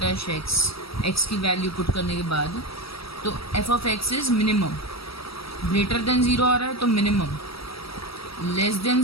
एक्स की वैल्यू पुट करने के बाद, तो f of x is minimum. Greater than zero आ रहा है तो मिनिमम, लेस देन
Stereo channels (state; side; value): late; right; 0.76 ms